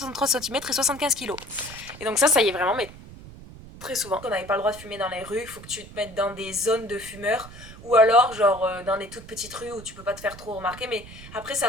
cm et 75 kg. Et donc ça y est vraiment, mais très souvent. On n'avait pas le droit de fumer dans les rues, il faut que tu te mettes dans des zones de fumeurs. Ou alors, genre, dans des toutes petites rues où tu peux pas te faire trop remarquer. Mais après,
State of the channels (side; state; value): right; noise; rumble, 16 dB below the sound